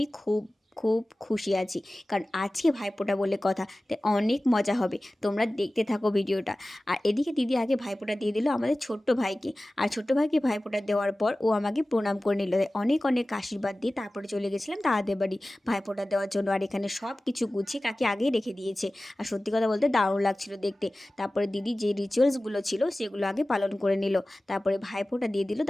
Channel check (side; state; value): both; normal; correlation 0.97